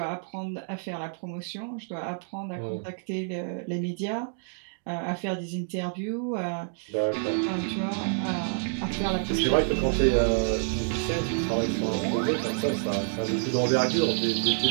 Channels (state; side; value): silent; left; digital silence